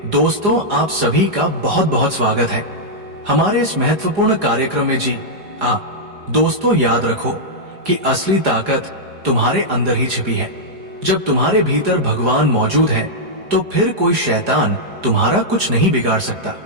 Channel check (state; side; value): late; left; 4.9 ms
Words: दोस्तों, आप सभी का बहुत बहुत स्वागत है हमारे इस महत्वपूर्ण कार्यक्रम में। जी दोस्तों, याद रखो कि असली ताकत तुम्हारे अंदर ही छिपी है। जब तुम्हारे भीतर भगवान मौजूद है तो फिर कोई शैतान तुम्हारा कुछ नहीं बिगाड़ सकता।